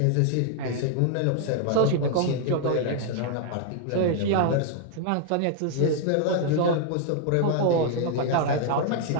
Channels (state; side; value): different; both; correlation 0.00